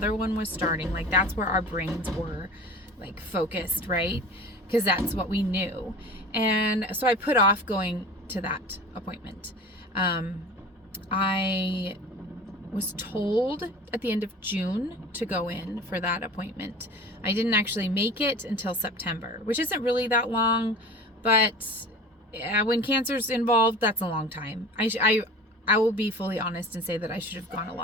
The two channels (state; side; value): normal; both; correlation 0.38